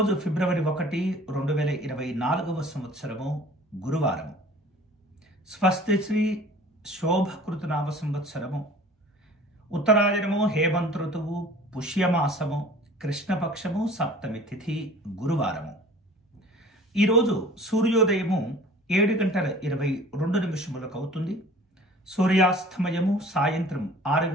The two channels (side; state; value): both; normal; correlation 0.46